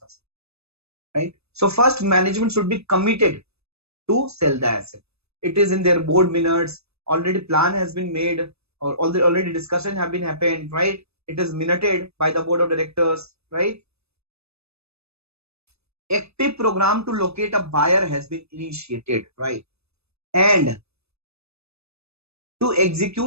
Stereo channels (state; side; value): late; left; 0.79 ms